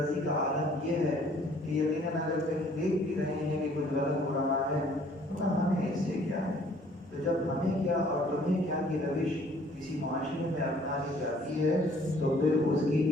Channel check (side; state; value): both; normal; correlation 0.58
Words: کا عالم یہ ہے کہ یقیناً اگر کہیں دیکھ بھی رہے ہیں کہ کچھ غلط ہو رہا ہے تو ہمیں اس سے کیا ہے۔ تو جب ہمیں کیا اور تمہیں کیا کی روش کسی معاشرے میں اپنا لی جاتی ہے تو پھر اس کی